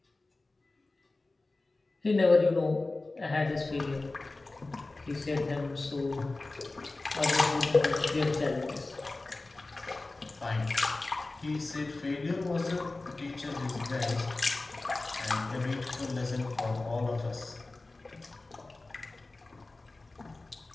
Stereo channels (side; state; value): right; quieter; 3.2 dB